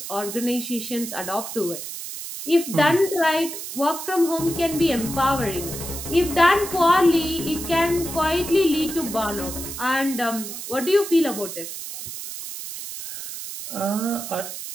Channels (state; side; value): noise; right; hiss, 8 dB below the sound